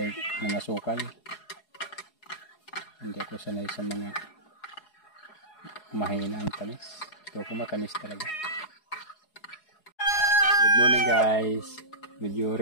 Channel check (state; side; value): late; right; 4.8 ms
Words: ng asukal. Hindi ako sanay sa mga mahina ang tamis. Ito ko matamis talaga. Good morning guys. Medyo